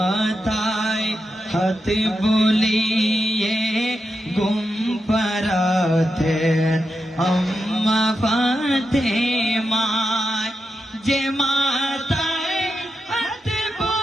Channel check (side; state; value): both; normal; correlation 0.86